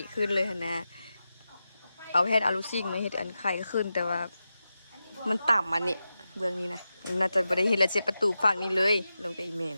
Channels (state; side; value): inverted; both; correlation -0.91